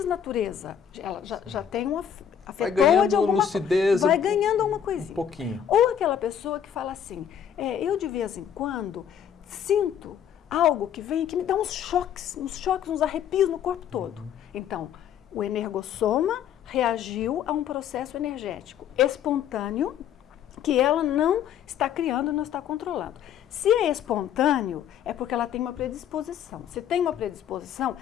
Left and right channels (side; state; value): right; quieter; 8.9 dB